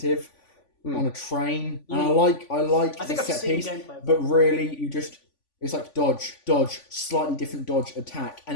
on a train, and I like I think the I've set seen piece, gameplay. but really it's like dodge, slightly different dodge, attack,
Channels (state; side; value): late; right; 3.5 ms